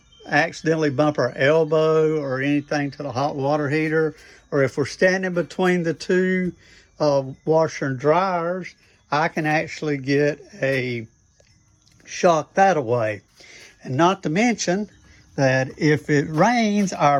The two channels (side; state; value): both; identical; correlation 1.00